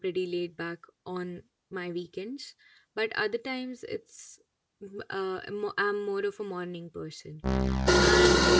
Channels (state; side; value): identical; both; correlation 1.00